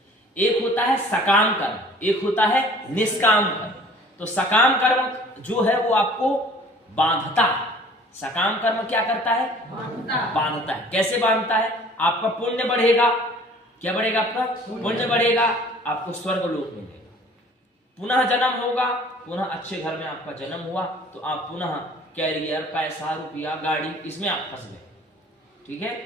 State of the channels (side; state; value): both; normal; correlation 0.50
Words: एक होता है सकाम कर्म, एक होता है निष्काम कर्म। तो सकाम कर्म जो है वो आपको बांधता है, सकाम कर्म क्या करता है, बांधता है। कैसे बांधता है, आपका पुण्य बढ़ेगा, क्या बढ़ेगा, आपका पुण्य बढ़ेगा, आपको स्वर्ग लोक मिलेगा, पुनः जन्म होगा, पुनः अच्छे घर में आपका जन्म हुआ, तो आप पुनः कैरियर, पैसा, रुपया, गाड़ी, इसमें आप फंस गए, ठीक है।